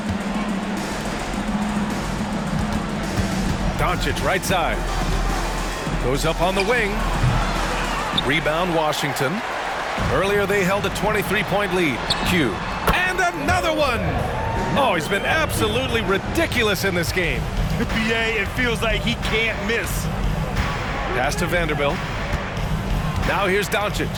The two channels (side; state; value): both; identical; correlation 1.00